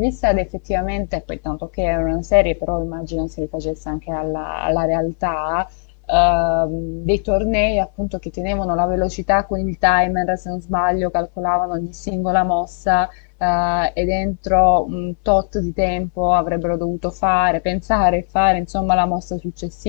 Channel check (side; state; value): right; silent; digital silence